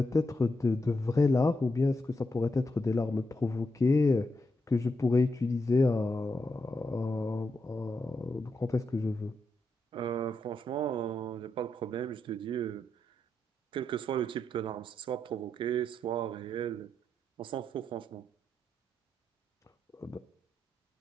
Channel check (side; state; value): both; normal; correlation 0.83